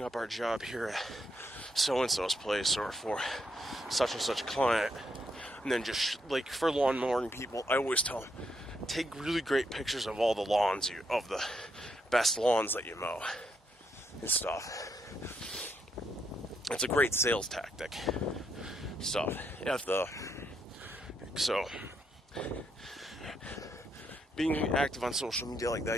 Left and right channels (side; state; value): both; normal; correlation 0.77